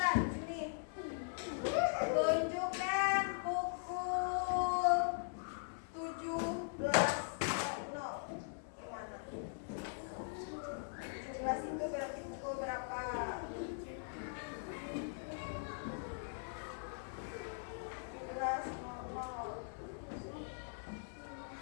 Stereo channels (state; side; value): silent; right; digital silence